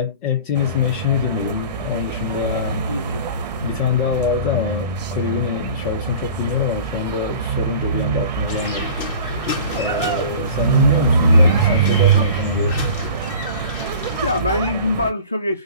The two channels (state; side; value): inverted; both; correlation -0.41